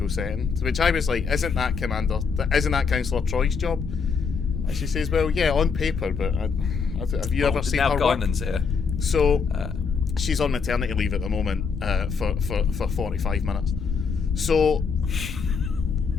setting. To which I was like, isn't that Councillor Troy's job? And she says, well, yeah, on paper, but have you ever seen her work? Now Guinan's here. So she's on maternity leave at the moment for 45 minutes. So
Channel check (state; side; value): quieter; right; 5.5 dB